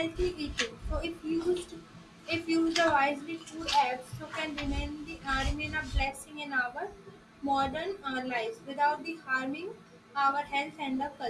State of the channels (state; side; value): identical; both; correlation 1.00